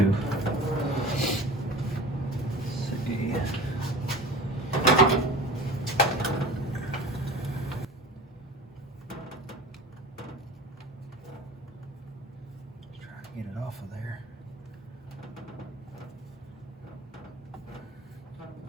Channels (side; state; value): both; normal; correlation 0.37